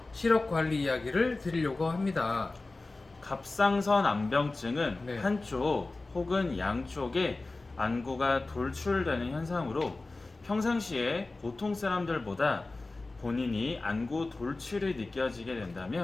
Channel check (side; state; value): right; quieter; 3.3 dB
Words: 시력 관리 이야기를 드리려고 합니다. 갑상선 안병증은 네. 한쪽 혹은 양쪽에 안구가 돌출되는 현상으로 평상시에 보통 사람들보다 본인이 안구 돌출이 느껴지게